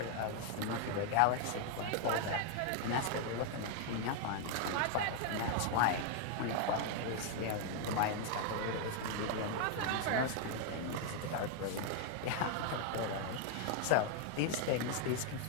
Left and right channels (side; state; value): both; different; correlation 0.00